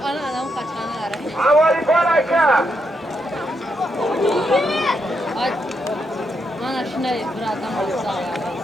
adam kaçanı ara. Havali Paraka. Ay. Mana şuna bir adam olsa ya.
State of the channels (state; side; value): normal; both; correlation 0.81